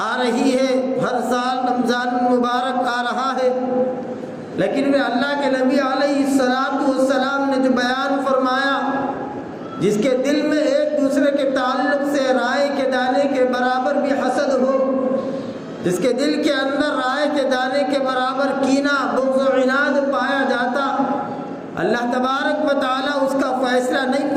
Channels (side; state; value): both; identical; correlation 1.00